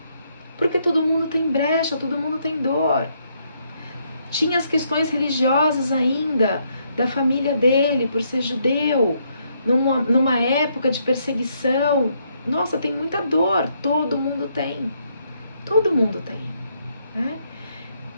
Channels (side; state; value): both; inverted; correlation -0.74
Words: Porque todo mundo tem brecha, todo mundo tem dor. Tinha as questões religiosas ainda, da família dele, por ser judeu, numa época de perseguição. Nossa, tem muita dor, todo mundo tem. Todo mundo tem, né?